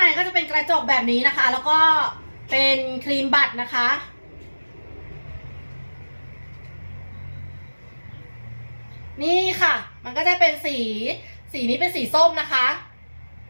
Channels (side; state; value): both; inverted; correlation -1.00